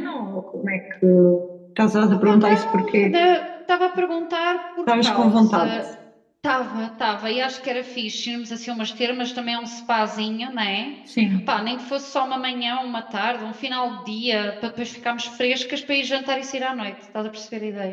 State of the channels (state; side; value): identical; both; correlation 1.00